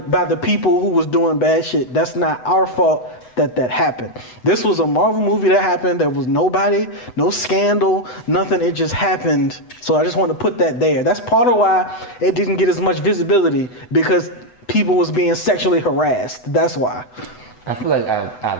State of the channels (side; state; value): right; late; 8.0 ms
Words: people who was doing bad shit. That's not our fault that happened. This was a Marvel movie that happened. There was nobody, no scandal, nothing. It just happened. So I just want to put that there. That's part of why it didn't get as much visibility, because people was being sexually harassed. That's why. I feel like